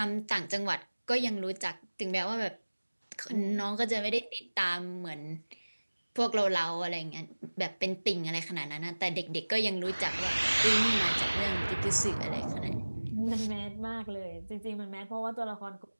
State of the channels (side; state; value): both; inverted; correlation -1.00